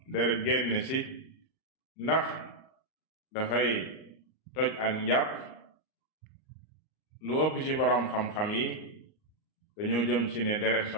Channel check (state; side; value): late; right; 38 ms